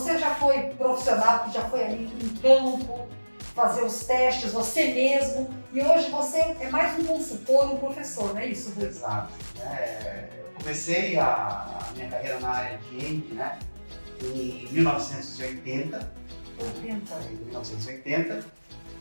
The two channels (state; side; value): inverted; both; correlation -1.00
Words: já foi profissional, já foi ali em campo, fazer os testes, você mesmo, e hoje você é mais um consultor, um professor, não é isso, Rui? Exato. Eu comecei a minha carreira na área de END, né, em 1980. 1980.